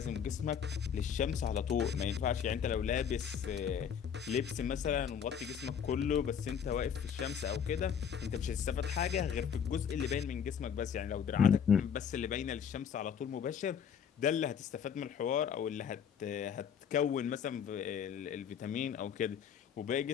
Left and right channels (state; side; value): quieter; right; 7.8 dB